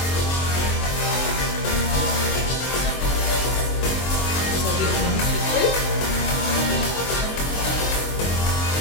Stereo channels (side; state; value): right; late; 23 ms